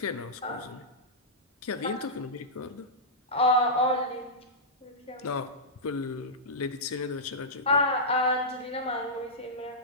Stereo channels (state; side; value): normal; both; correlation -0.13